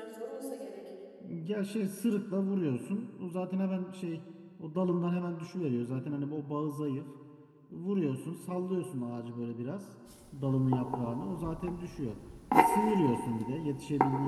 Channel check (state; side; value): identical; both; correlation 1.00